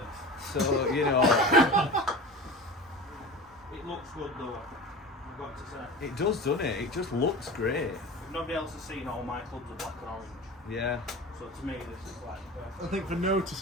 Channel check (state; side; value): normal; both; correlation 0.33